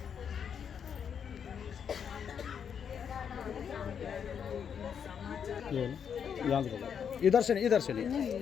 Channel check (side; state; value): right; quieter; 7.6 dB